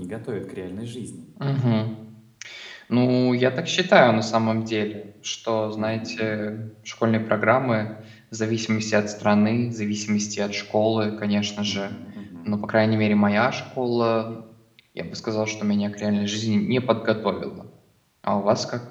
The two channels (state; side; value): identical; both; correlation 1.00